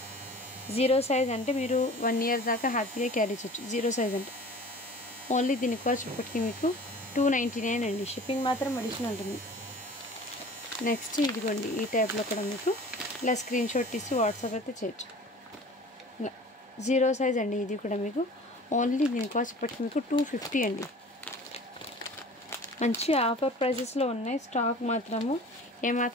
0 సైజ్, అంటే మీరు 1 year దాకా హ్యాపీగా క్యారీ చేయొచ్చు. 0 సైజ్ అంటే ఓన్లీ దీని కాస్ట్ ఇప్పటికీ మీకు 299 అండి, షిప్పింగ్ మాత్రం అడిషనల్ ఉంటుంది. నెక్స్ట్ ఇదిగోండి ఈ టైప్లో కూడా మీకు ఇలా స్క్రీన్ షాట్ తీసి వాట్సాప్ అయితే చేయొచ్చు. ఇలా 0 సైజ్ అండి, ఇది కూడా మీకు ఓన్లీ దీని కాస్ట్ ఇప్పటికి మీకు 250 అండి. మంచి ఆఫర్ ప్రైజెస్లో ఉన్నాయి, స్టాక్ మాత్రము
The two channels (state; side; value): normal; both; correlation 0.43